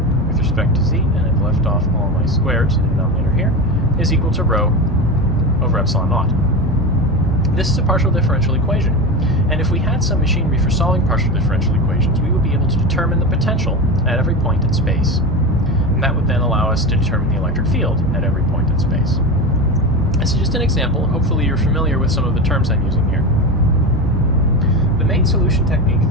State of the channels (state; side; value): normal; both; correlation 0.22